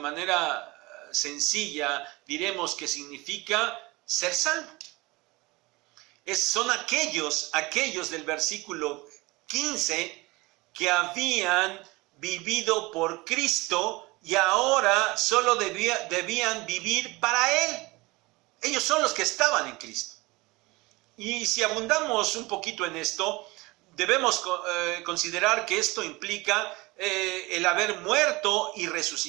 sencilla diremos que significa ser salvo. Son aquellos del versículo 15 que habían vivido por Cristo y ahora solo debían vivir para Él. Ellos son los que estaban en Cristo. Y si abundamos un poquito en esto, debemos considerar que esto implica el haber muerto y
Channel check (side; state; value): left; quieter; 22.7 dB